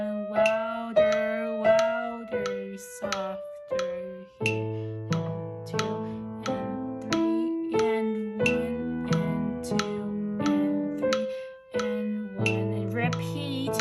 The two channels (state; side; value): identical; both; correlation 1.00